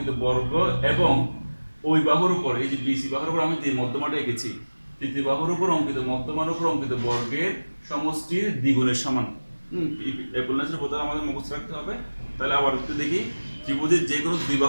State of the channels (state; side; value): inverted; both; correlation -1.00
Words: বর্গ এবং ওই বাহুর উপর, এই যে বিসি বাহুর উপর আমি যে মধ্যমাটা এঁকেছি, তৃতীয় বাহুর উপর অঙ্কিত মধ্যমার উপর অঙ্কিত বর্গের সমষ্টির দ্বিগুণের সমান। অ্যাপোলোনিয়াসের উপপাদ্য আমাদের মুখস্থ রাখতে হবে। তাহলে আবার একটু দেখি, ত্রিভুজের যে কোনো দুই